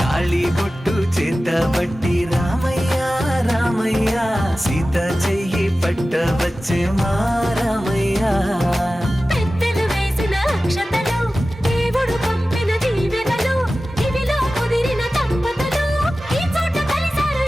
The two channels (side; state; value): both; normal; correlation 0.95